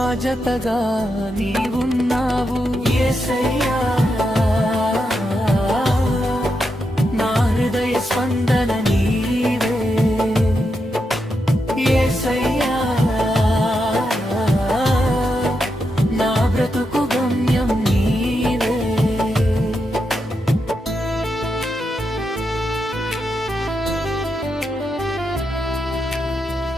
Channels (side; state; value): both; normal; correlation 0.84